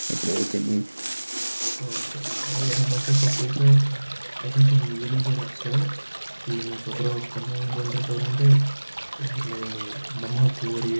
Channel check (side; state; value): both; inverted; correlation -1.00